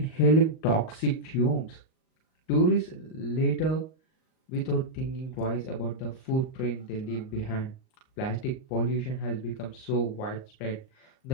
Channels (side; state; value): right; late; 38 ms